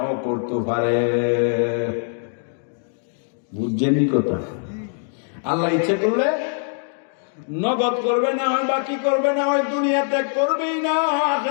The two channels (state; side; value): silent; right; 64 dB below the other